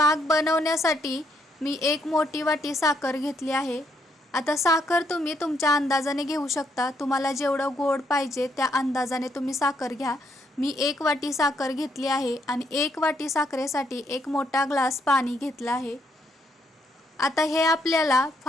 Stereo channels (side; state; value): both; normal; correlation 0.74